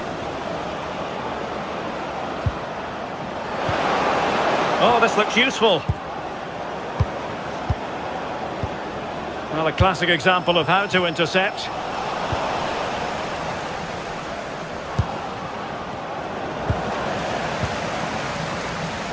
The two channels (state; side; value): identical; both; correlation 1.00